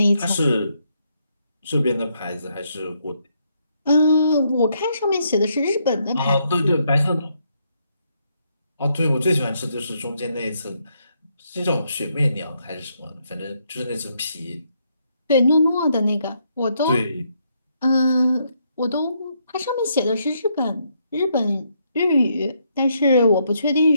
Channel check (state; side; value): inverted; both; correlation -0.75